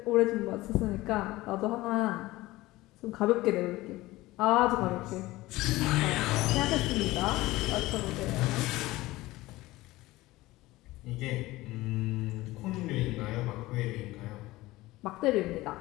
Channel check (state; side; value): quieter; right; 18.7 dB